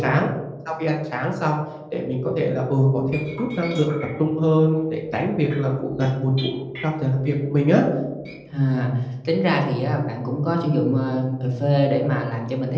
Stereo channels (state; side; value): identical; both; correlation 1.00